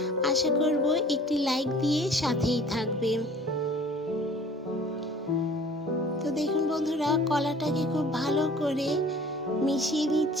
আশা করব একটি লাইক দিয়ে সাথেই থাকবেন। তো দেখুন বন্ধুরা, কলাটাকে খুব ভালো করে মিশিয়ে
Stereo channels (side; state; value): both; normal; correlation 0.49